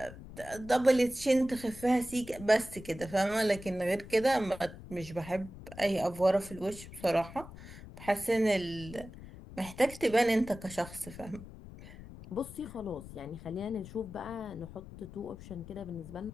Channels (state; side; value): noise; left; rumble, 15 dB below the sound